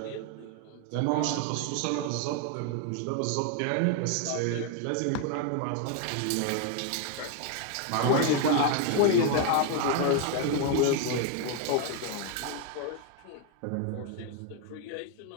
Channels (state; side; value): different; both; correlation 0.01